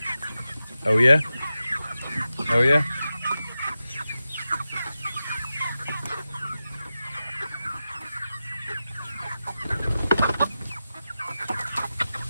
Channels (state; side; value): inverted; both; correlation -0.92